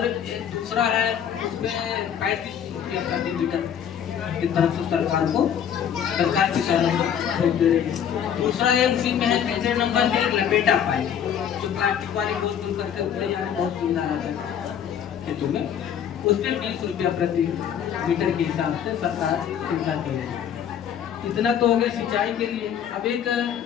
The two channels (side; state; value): right; quieter; 8.9 dB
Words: दूसरा है, उसमें 35 रुपया प्रति मीटर की तरफ से सरकार किसानों को छूट दे रही है। दूसरा है, उसी में है तीसरे नंबर पे लपेटा पाइप, जो प्लास्टिक वाली गोल गोल करके उतरे जाने बहुत सुविधा रहता है खेतों में, उस पर 20 रुपया प्रति मीटर के हिसाब से सरकार सुविधा दी है। इतना तो हो गया सिंचाई के लिए। अब एक